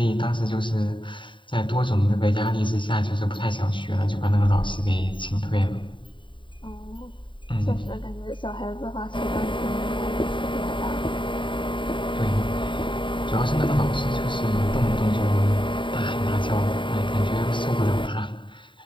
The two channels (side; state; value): right; late; 0.24 ms